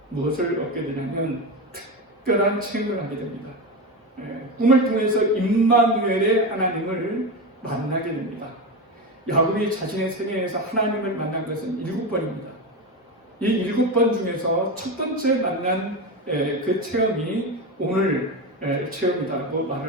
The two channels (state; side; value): normal; both; correlation 0.18